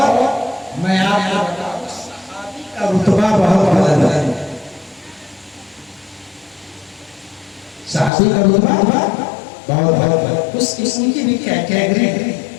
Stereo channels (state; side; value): drops out; right; at 8.1 s